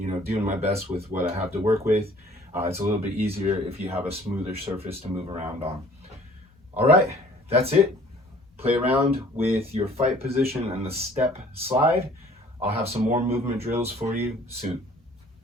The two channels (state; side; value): normal; both; correlation 0.54